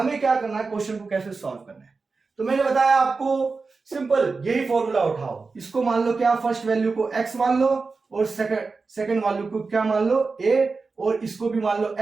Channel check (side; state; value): left; quieter; 4.3 dB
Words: क्या करना है, क्वेश्चन को कैसे सॉल्व करना है। तो मैंने बताया आपको सिंपल, यही फॉर्मूला उठाओ, इसको मान लो क्या, फर्स्ट वैल्यू को x मान लो और सेकंड वैल्यू को क्या मान लो a, और इसको भी मान लो